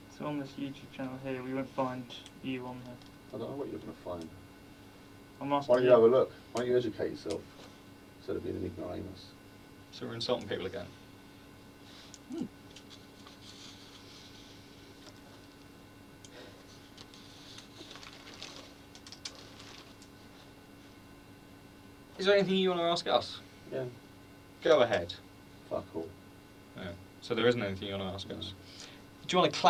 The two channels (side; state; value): both; identical; correlation 1.00